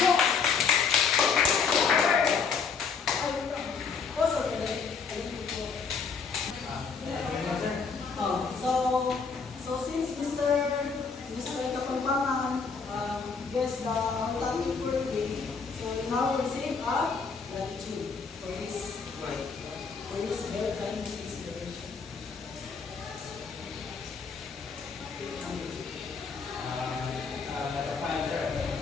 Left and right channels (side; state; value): right; quieter; 5.4 dB